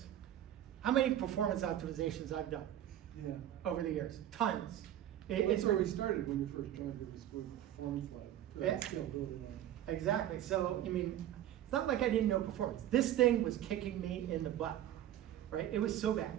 how many performance optimizations I've done. Yeah. Over the years, tons. That's where we started when you first joined. It was with Performance Lab. Yeah. Scalability Lab. Exactly. So, I mean, it's not like I didn't know performance. This thing was kicking me in the butt, right? It was so bad,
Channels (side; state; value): left; quieter; 12.0 dB